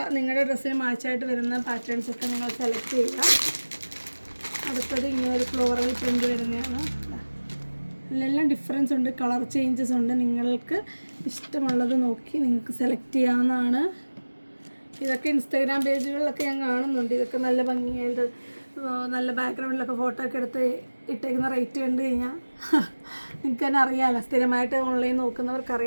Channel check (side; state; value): both; inverted; correlation -1.00